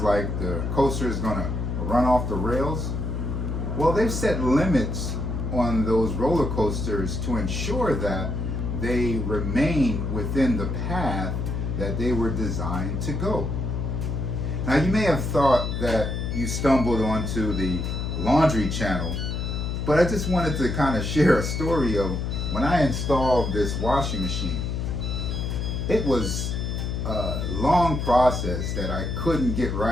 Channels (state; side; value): noise; left; hum, 2 dB below the sound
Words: the coaster is going to run off the rails? Well, they've set limits on those roller coasters to ensure that they remain within the path that they were designed to go. Now, you may have thought that you stumbled onto the Laundry Channel, but I just wanted to kind of share a story of when I installed this washing machine. It was a long process that I couldn't get